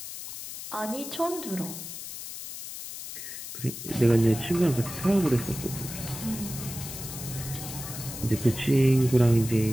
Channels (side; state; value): left; noise; hiss, 10 dB below the sound